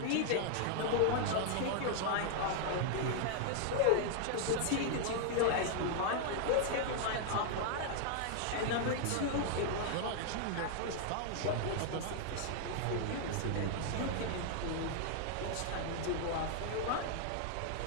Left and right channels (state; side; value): different; both; correlation 0.00